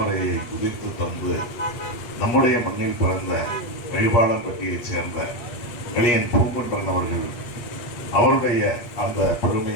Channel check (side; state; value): right; late; 8.3 ms